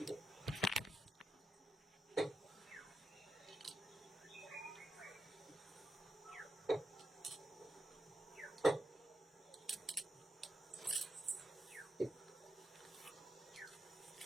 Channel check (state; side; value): normal; both; correlation 0.85